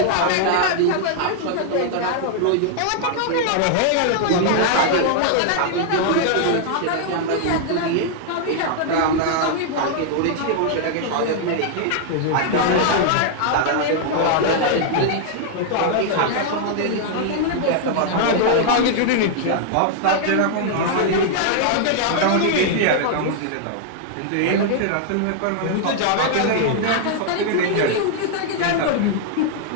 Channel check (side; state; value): both; different; correlation -0.01